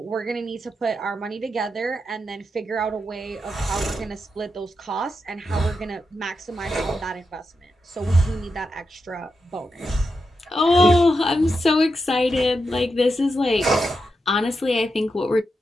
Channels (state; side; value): normal; both; correlation 0.87